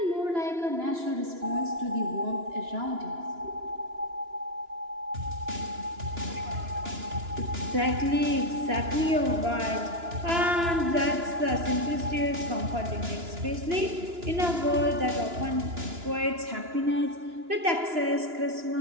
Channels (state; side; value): late; left; 2.9 ms